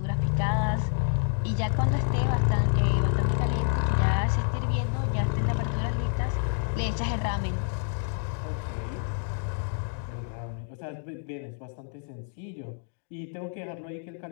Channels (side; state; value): right; silent; 59 dB below the other